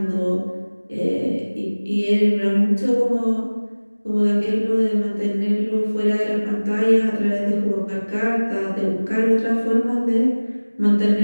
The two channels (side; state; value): both; inverted; correlation -1.00